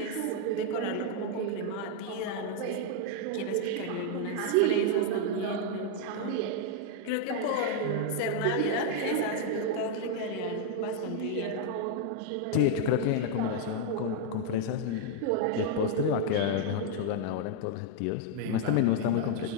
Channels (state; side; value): different; both; correlation 0.00